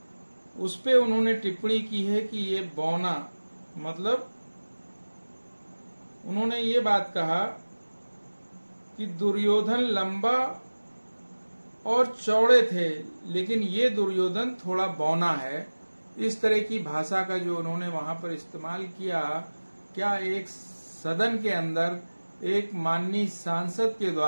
उस पे उन्होंने टिप्पणी की है कि ये बौना, मतलब उन्होंने ये बात कहा कि दुर्योधन लंबा और चौड़े थे, लेकिन ये दुर्योधन थोड़ा बौना है। इस तरह की भाषा का जो उन्होंने वहां पर इस्तेमाल किया, क्या एक सदन के अंदर एक माननीय सांसद के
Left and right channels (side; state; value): both; inverted; correlation -1.00